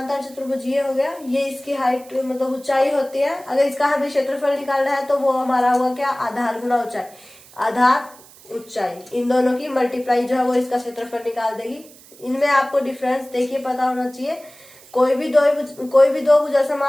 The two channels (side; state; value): right; noise; hiss, 23 dB below the sound